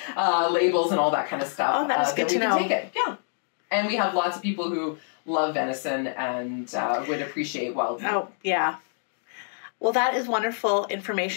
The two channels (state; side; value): silent; right; digital silence